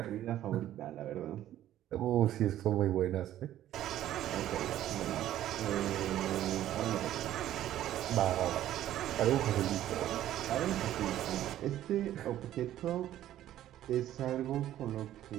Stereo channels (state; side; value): quieter; left; 12.7 dB